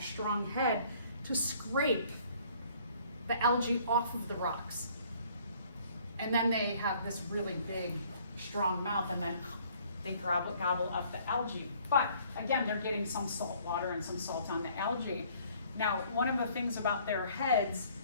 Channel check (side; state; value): both; inverted; correlation -0.59